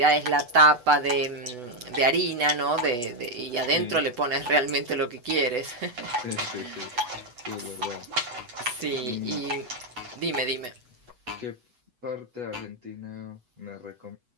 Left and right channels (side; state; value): left; late; 8.1 ms